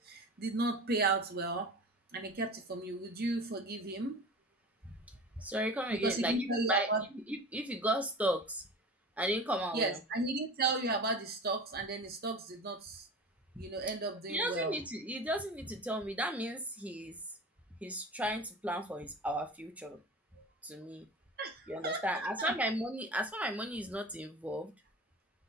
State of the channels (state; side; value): normal; both; correlation 0.34